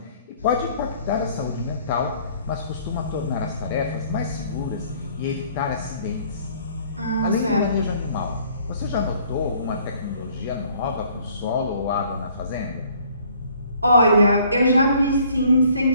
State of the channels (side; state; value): both; inverted; correlation -0.59